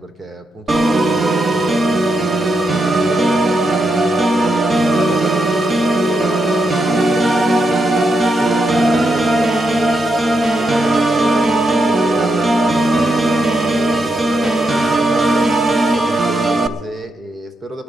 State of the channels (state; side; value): normal; both; correlation 0.83